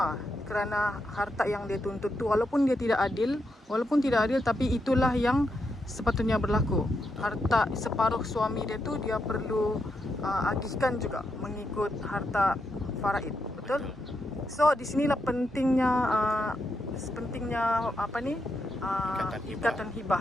kerana harta yang dia tuntut tu walaupun tidak adil tapi itulah yang sepatutnya berlaku. Harta separuh suami dia tu dia perlu agihkan juga mengikut harta faraid. Betul? So di sinilah pentingnya ikatan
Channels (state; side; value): normal; both; correlation 0.83